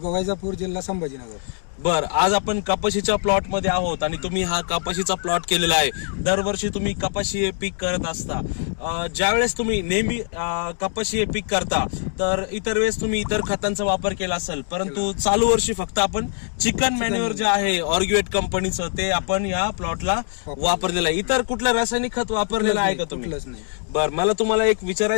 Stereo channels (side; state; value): right; silent; digital silence